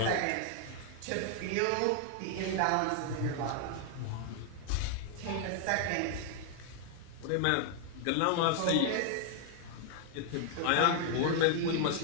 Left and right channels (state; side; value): different; both; correlation 0.00